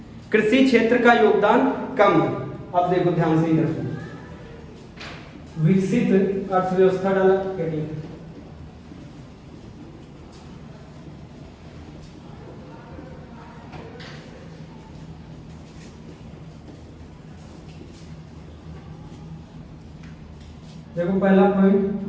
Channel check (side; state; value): both; identical; correlation 1.00